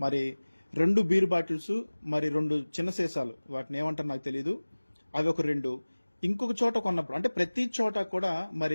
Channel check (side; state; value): both; inverted; correlation -1.00